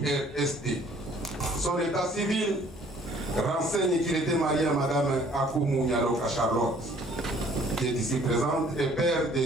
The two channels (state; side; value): normal; both; correlation 0.57